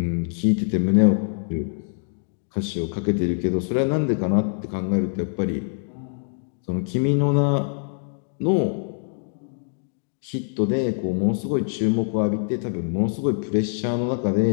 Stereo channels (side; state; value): right; silent; digital silence